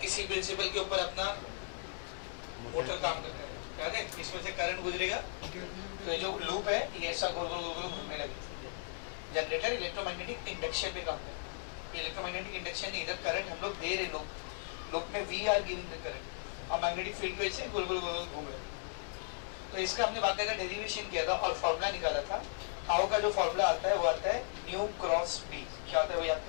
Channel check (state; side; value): silent; right; digital silence